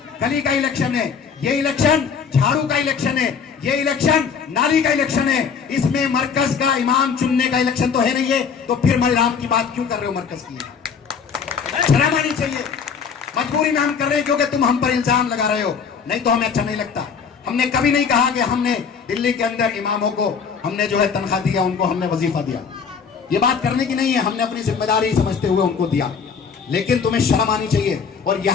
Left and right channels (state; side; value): quieter; right; 6.3 dB